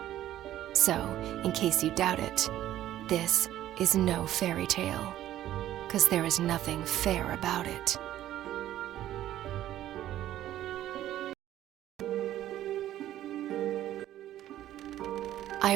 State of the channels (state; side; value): quieter; left; 12.9 dB